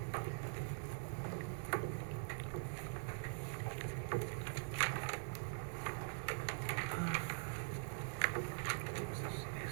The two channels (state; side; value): silent; left; digital silence